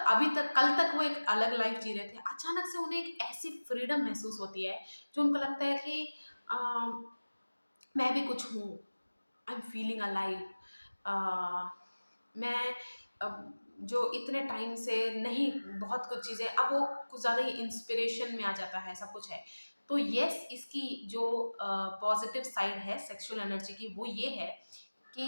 अभी तक कल तक वो एक अलग लाइफ जी रहे थे, अचानक से उन्हें एक ऐसी फ्रीडम महसूस होती है जो उनको लगता है कि मैं भी कुछ हूँ, आई एम फीलिंग अलाइव। मैं जो इतने टाइम से नहीं, बहुत कुछ चीज़ें, अब वो कुछ ज़्यादा ही इंस्पिरेशन में आ जाता है, सब कुछ है। तो यस, इसकी जो पॉजिटिव साइड है सेक्सुअल एनर्जी की, वो ये है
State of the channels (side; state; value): both; inverted; correlation -1.00